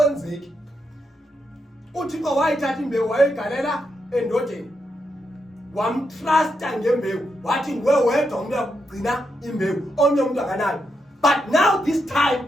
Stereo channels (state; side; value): normal; both; correlation 0.83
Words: uThixo wayithatha imbewu wayigalela endodeni, wamtrusta ngembewu, wathi nguwe wedwa umuntu uyakugcina imbewu, omnye umuntu akanayo. But now this time